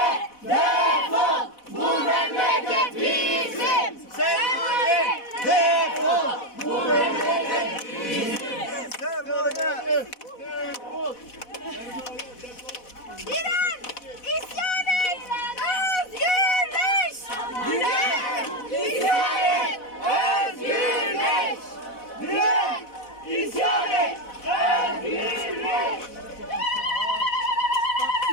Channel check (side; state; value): right; late; 4.1 ms